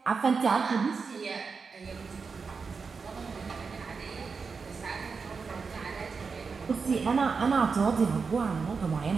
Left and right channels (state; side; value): quieter; left; 5.1 dB